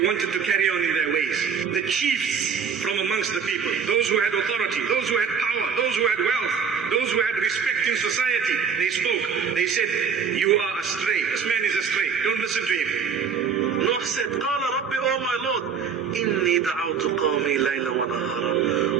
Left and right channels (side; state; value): left; quieter; 6.5 dB